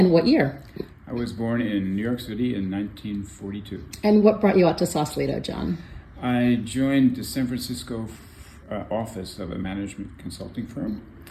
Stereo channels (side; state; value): both; identical; correlation 1.00